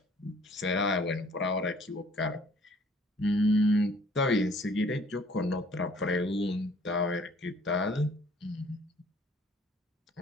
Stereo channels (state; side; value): normal; both; correlation 0.56